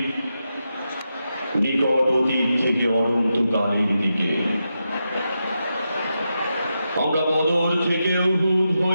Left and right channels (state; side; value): inverted; both; correlation -0.87